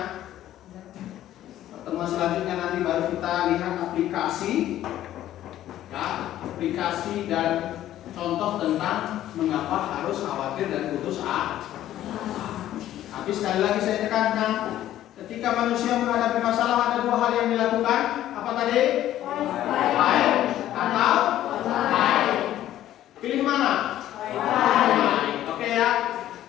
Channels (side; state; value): right; quieter; 12.9 dB